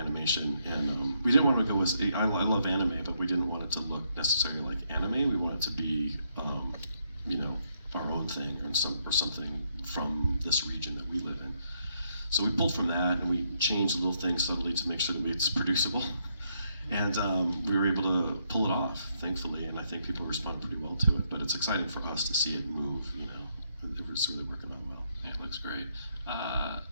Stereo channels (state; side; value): inverted; both; correlation -0.76